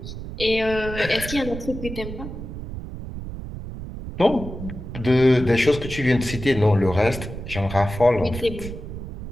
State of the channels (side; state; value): right; noise; rumble, 9 dB below the sound